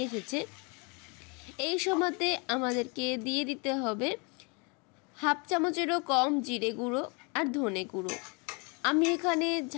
এসেছে। এই সময়তে আমাদেরকে দিয়ে দিতে হবে 1/2 চামচেরও কম জিরে গুঁড়ো আর ধনে গুঁড়ো। আমি এখানে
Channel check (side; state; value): right; quieter; 31.9 dB